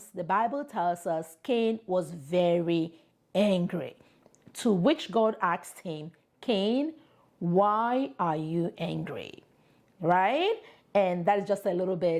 the Bible tells us Cain was very angry, to which God asked him, Cain, why are you angry? Right? And that is just a little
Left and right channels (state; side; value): identical; both; correlation 1.00